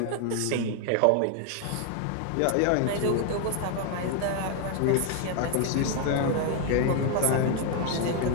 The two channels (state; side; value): different; both; correlation 0.00